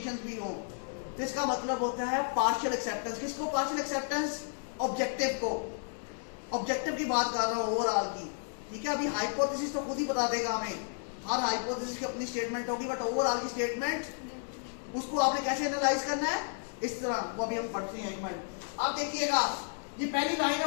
भी हो, तो इसका मतलब होता है पार्शियल एक्सेप्टेंस। किसको पार्शियल एक्सेप्टेंस? ऑब्जेक्टिव को। ऑब्जेक्टिव की बात कर रहा हूं, ओवरऑल की। ठीक है, अभी हाइपोथेसिस तो खुद ही बता देगा हमें, हर हाइपोथेसिस की अपनी स्टेटमेंट होगी, बट ओवरऑल की स्टेटमेंट उसको आपने कैसे एनालाइज करना है, इस तरह, वो अभी हम पढ़ते हैं। एक मिनट, आप देखिएगा, ये पहली लाइन है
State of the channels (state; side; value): silent; right; digital silence